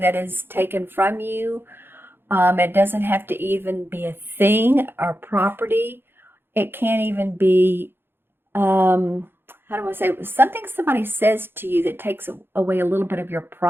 that is taken from you. It doesn't have to even be a thing or property. It can't even be, how do I say, something somebody says to you that takes away a little bit of your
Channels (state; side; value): late; left; 0.10 ms